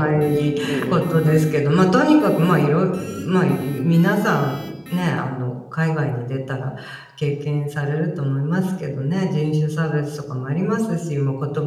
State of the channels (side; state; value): both; identical; correlation 1.00